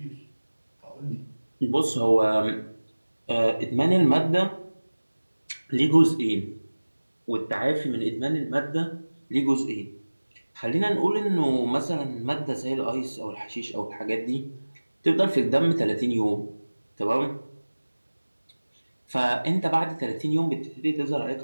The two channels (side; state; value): both; inverted; correlation -1.00